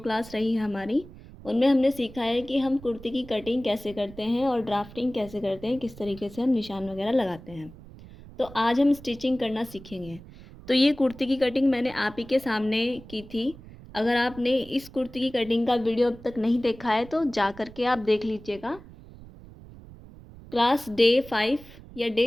रही है हमारी, उनमें हमने सीखा है कि हम कुर्ती की कटिंग कैसे करते हैं और ड्राफ्टिंग कैसे करते हैं, किस तरीके से हम निशान वगैरह लगाते हैं। तो आज हम स्टिचिंग करना सीखेंगे। तो ये कुर्ती की कटिंग मैंने आप ही के सामने की थी। अगर आपने इस कुर्ती की कटिंग का वीडियो अब तक नहीं देखा है तो जा करके आप देख लीजिएगा। क्लास डे 5 या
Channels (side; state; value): right; noise; rumble, 18 dB below the sound